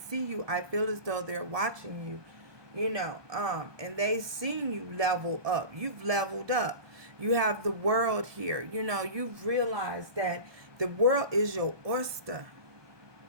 you. I feel as though they're watching you. And they seen you level up. You've leveled up. You have the world here. You've realized that the world is your oyster.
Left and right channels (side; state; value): left; late; 1.2 ms